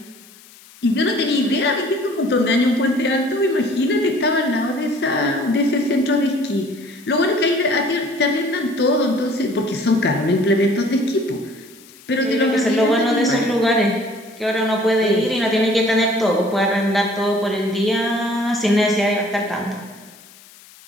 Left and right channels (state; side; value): noise; left; hiss, 23 dB below the sound